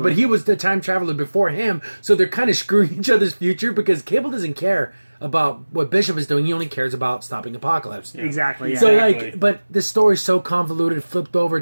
he was the time traveler before him. So they're kind of screwing each other's future because Cable doesn't care about what Bishop is doing. He only cares about stopping Apocalypse. Exactly. Yeah. So Exactly. but the story's so convoluted, flipped over,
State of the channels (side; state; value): both; inverted; correlation -1.00